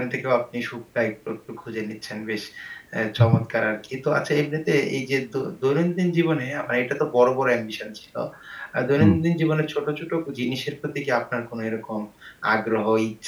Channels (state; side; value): identical; both; correlation 1.00